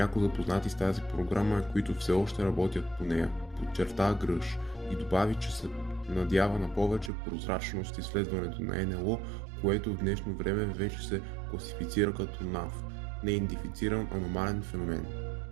запознати с тази програма и които все още работят по нея, подчерта Гръш и добави, че се надява на повече прозрачност изследването на НЛО, което в днешно време вече се класифицира като НАФ – неидентифициран аномален феномен.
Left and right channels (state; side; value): drops out; left; at 7.1 s